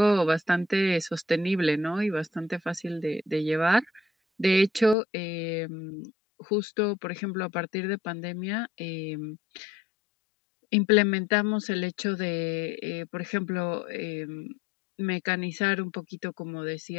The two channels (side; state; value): right; drops out; at 5.0 s